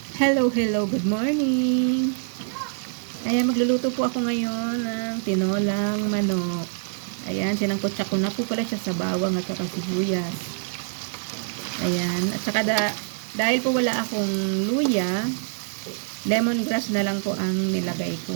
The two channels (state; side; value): silent; left; digital silence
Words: Hello, hello, good morning. Ayan, magluluto po ako ngayon ng tinolang manok. Ayan, sinangkotsa ko na po pala siya sa bawang at saka sibuyas. Ayan, at saka dahil po wala akong luya, lemongrass na lang po ang nilagay ko.